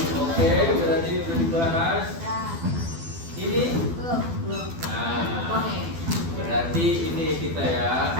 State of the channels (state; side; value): late; left; 12 ms